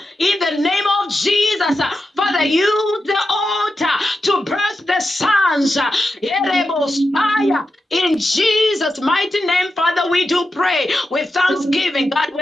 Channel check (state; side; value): normal; both; correlation 0.89